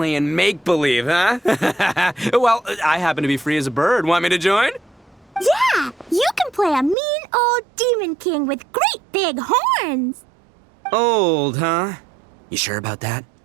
make-believe, huh? Well, I happen to be free as a bird. Want me to join? Yeah, you can play a mean old demon king with great big horns. Old, huh? You sure about that?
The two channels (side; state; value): left; drops out; at 7.0 s